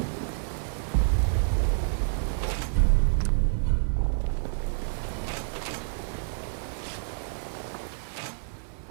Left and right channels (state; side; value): silent; left; 57 dB below the other